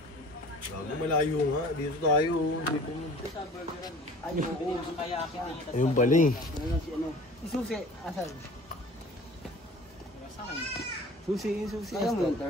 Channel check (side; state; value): both; normal; correlation 0.45